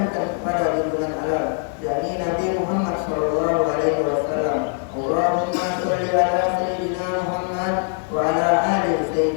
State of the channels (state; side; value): silent; right; 55 dB below the other